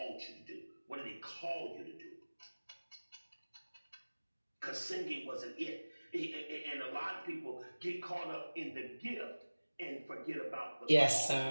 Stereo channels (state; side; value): inverted; both; correlation -1.00